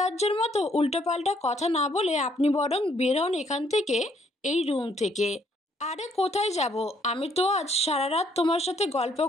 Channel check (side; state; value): both; normal; correlation 0.67